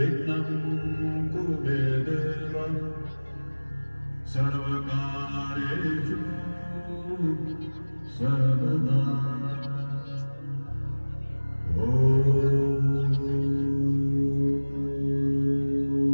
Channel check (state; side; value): inverted; both; correlation -1.00